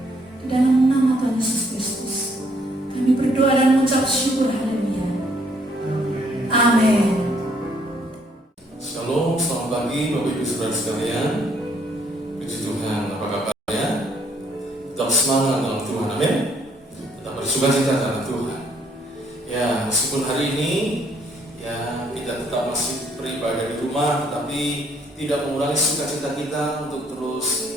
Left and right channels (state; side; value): normal; both; correlation 0.67